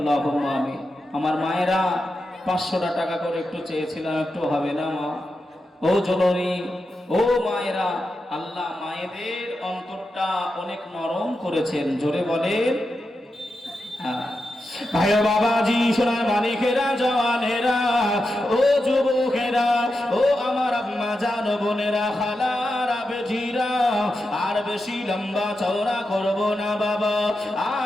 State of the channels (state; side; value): normal; both; correlation 0.88